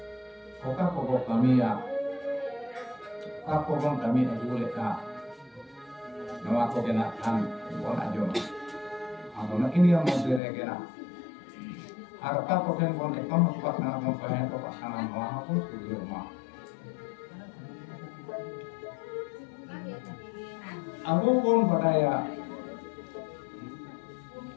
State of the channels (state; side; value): drops out; right; at 10.4 s